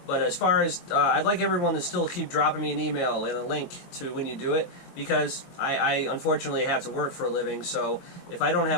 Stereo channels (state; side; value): late; right; 22 ms